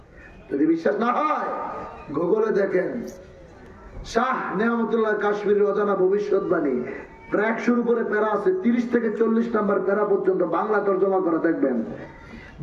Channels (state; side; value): identical; both; correlation 1.00